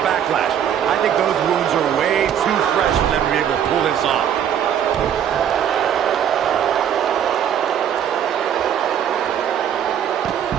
Backlash. I think those wounds are way too fresh for them to be able to pull this off.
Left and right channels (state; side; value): quieter; left; 9.3 dB